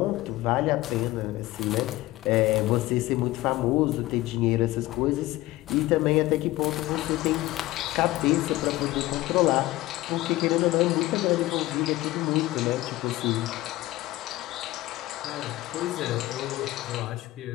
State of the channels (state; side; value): quieter; right; 17.7 dB